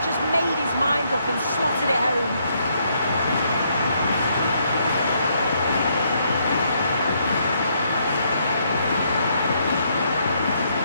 just made his mind up and slotted it home.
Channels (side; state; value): both; inverted; correlation -0.73